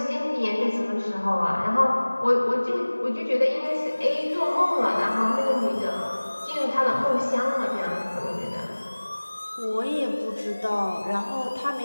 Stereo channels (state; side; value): inverted; both; correlation -1.00